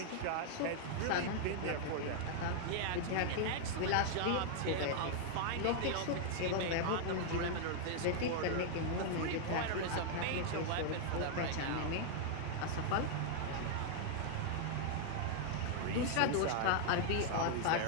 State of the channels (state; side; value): different; both; correlation 0.00